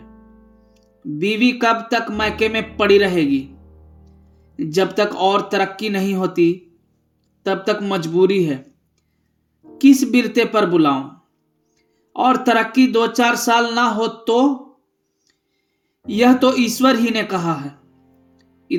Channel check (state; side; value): identical; both; correlation 1.00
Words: बीवी कब तक मैके में पड़ी रहेगी? जब तक और तरक्की नहीं होती, तब तक मजबूरी है। किस बिरते पर बुलाऊं? और तरक्की 2-4 साल ना हो तो? यह तो ईश्वर ही ने कहा है।